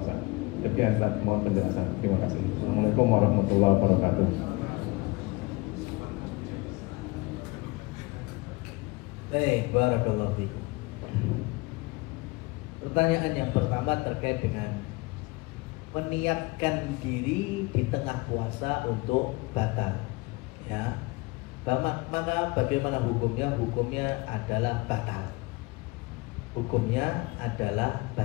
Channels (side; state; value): right; quieter; 24.3 dB